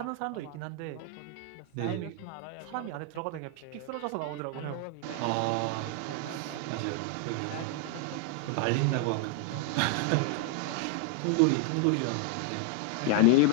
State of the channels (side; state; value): both; different; correlation 0.00